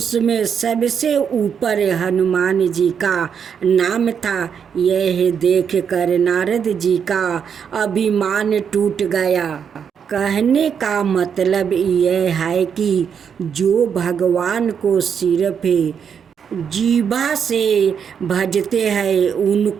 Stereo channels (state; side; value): quieter; left; 7.3 dB